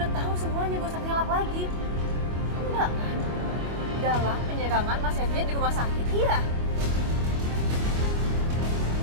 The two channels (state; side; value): late; left; 25 ms